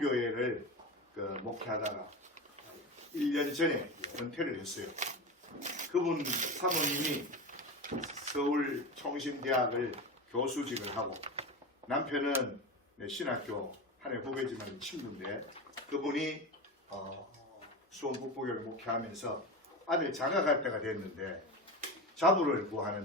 목회하다가 1년 전에 은퇴를 했어요. 그분 사모님이 서울 총신대학을 교수직을 하고 남편은 신학교 한 해 후배지만 친구인데 그분이 수원 북부교회를 목회하면서 아들 장가갈 때가 됐는데 자부를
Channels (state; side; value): normal; both; correlation 0.24